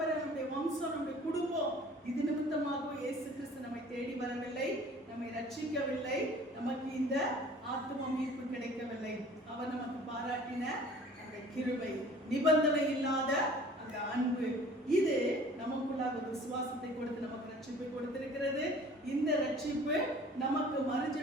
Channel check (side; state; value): both; normal; correlation 0.49